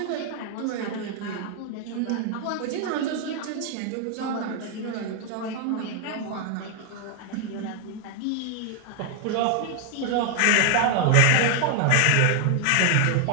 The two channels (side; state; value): both; different; correlation 0.00